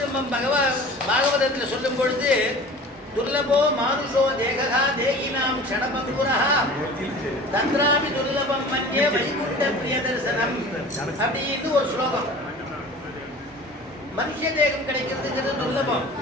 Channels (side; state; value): both; normal; correlation 0.41